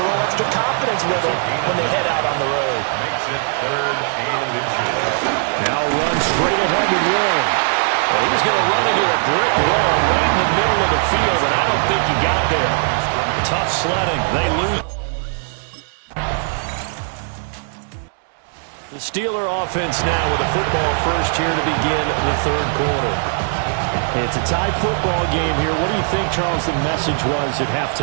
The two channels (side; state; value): left; silent; 66 dB below the other